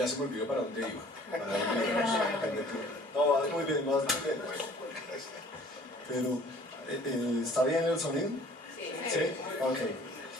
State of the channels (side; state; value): both; normal; correlation 0.53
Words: se me olvidó para dónde iba. No, vas muy bien, vas muy bien. Pero, ¿está bien el sonido? ¿Sí? Ok.